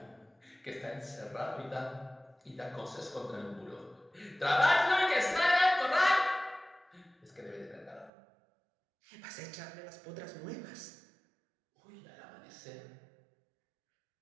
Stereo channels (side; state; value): left; drops out; at 8.1 s